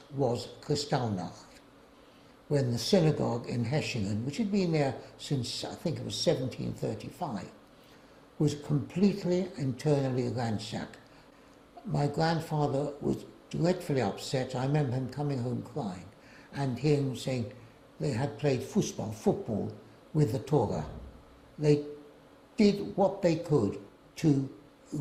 was Kristallnacht, when the synagogue in Hechingen, which had been there since I think it was 1735, was completely internally ransacked. My grandfather was dreadfully upset. I remember him coming home crying and hearing him saying they had played football with the Torah. They did what they could to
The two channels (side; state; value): both; identical; correlation 1.00